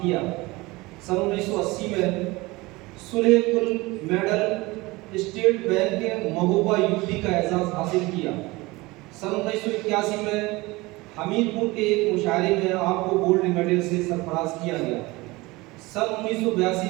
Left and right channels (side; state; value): left; quieter; 22.1 dB